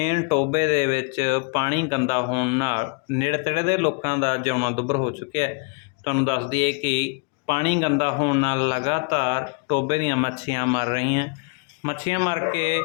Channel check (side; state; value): right; quieter; 33.4 dB